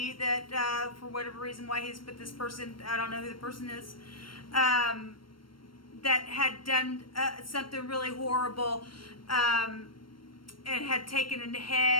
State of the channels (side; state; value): right; late; 0.73 ms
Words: that, for whatever reason, why he's put this person, I don't know who the person is, that had done something really horrible, and had taken a